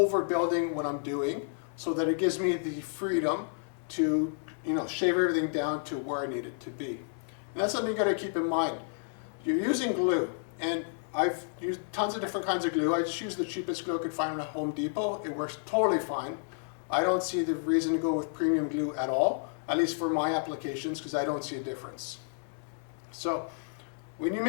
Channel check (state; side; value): silent; right; 57 dB below the other